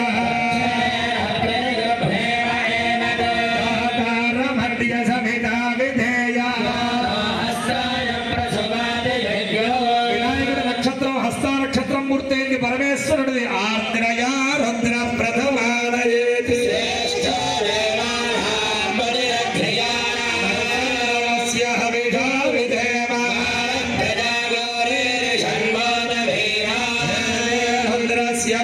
మూర్తి పరమేశ్వరుడిది. ఆర్ద్రయా రుద్ర ప్రథమాలయేతి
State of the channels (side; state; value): both; identical; correlation 1.00